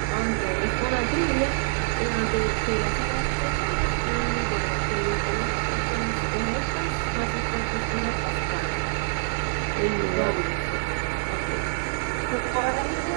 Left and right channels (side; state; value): left; silent; digital silence